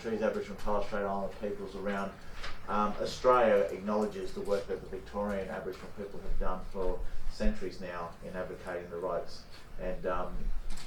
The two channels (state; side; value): identical; both; correlation 1.00